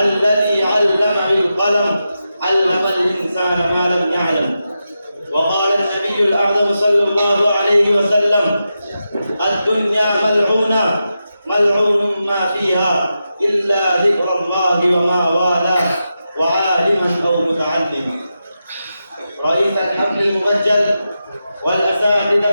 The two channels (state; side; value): inverted; both; correlation -0.89